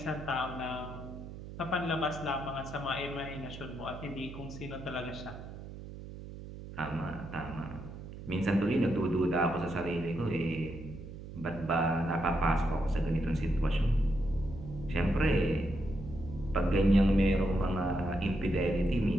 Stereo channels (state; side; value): noise; right; hum, 12 dB below the sound